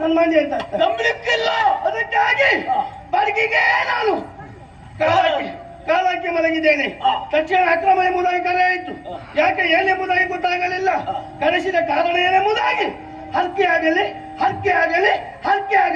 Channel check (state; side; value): identical; both; correlation 1.00